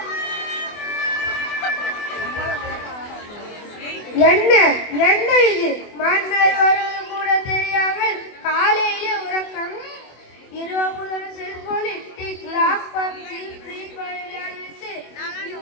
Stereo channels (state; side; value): late; right; 24 ms